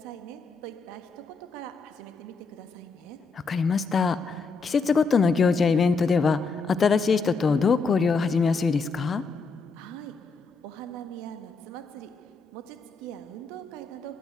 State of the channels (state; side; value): quieter; right; 4.4 dB